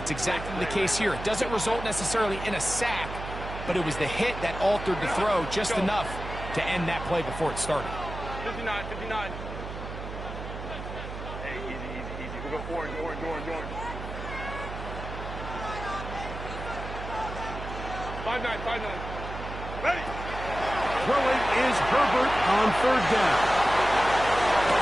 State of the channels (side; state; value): right; noise; hum, 8 dB below the sound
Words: exactly the case here. It doesn't result necessarily in a sack, but it was the hit that altered the throw just enough to end that play before it started. 59. Hey, easy. We go orange. 5-9. Ready. Throwing is Herbert on third down.